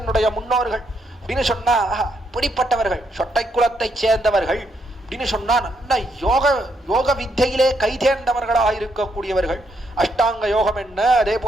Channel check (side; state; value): both; normal; correlation 0.76